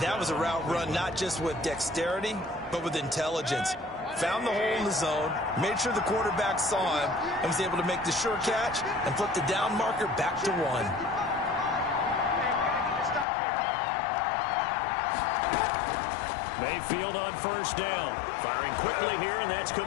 That was a route run not just with dexterity, but with intelligence. Found the hole in the zone, made sure the quarterback saw him, and was able to make the sure catch and flip the down marker back to 1. Mayfield on first down. Firing quickly here, and that's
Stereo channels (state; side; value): drops out; right; at 13.2 s